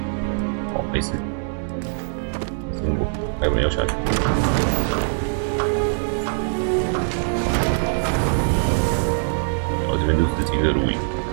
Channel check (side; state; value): left; silent; 62 dB below the other